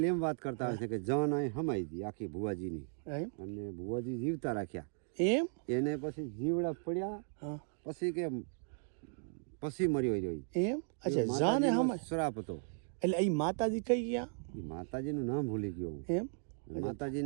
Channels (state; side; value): silent; left; 53 dB below the other